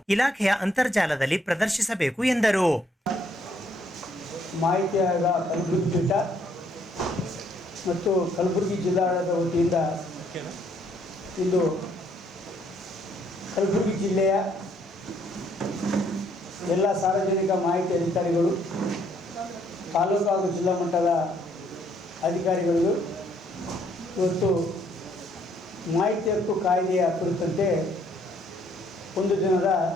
ಇಲಾಖೆಯ ಅಂತರ್ಜಾಲದಲ್ಲಿ ಪ್ರದರ್ಶಿಸಬೇಕು ಎಂದರು. ಮಾಹಿತಿ ಆಯೋಗ ಕಲಬುರಗಿ ಪೀಠ ಮತ್ತು ಕಲಬುರಗಿ ಜಿಲ್ಲಾಡಳಿತದ ವತಿಯಿಂದ ಇಂದು ಕಲಬುರಗಿ ಜಿಲ್ಲೆಯ ಎಲ್ಲ ಸಾರ್ವಜನಿಕ ಮಾಹಿತಿ ಅಧಿಕಾರಿಗಳು, ತಾಲೂಕು ಹಾಗೂ ಜಿಲ್ಲಾ ಮಟ್ಟದ ಅಧಿಕಾರಿಗಳು ಇವತ್ತು ಮಾಹಿತಿ ಹಕ್ಕು ಕಾಯ್ದೆಯ ಕುರಿತಂತೆ ಒಂದು ದಿನದ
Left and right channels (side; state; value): both; normal; correlation 0.67